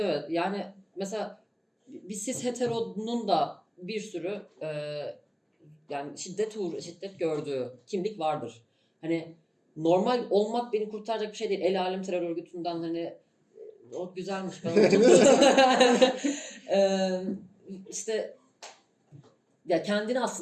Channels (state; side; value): identical; both; correlation 1.00